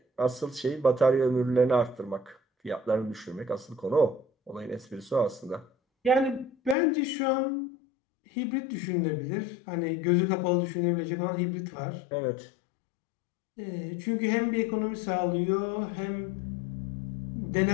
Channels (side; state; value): right; drops out; at 6.8 s